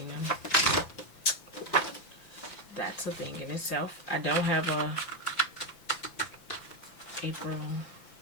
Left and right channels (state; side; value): late; right; 5.9 ms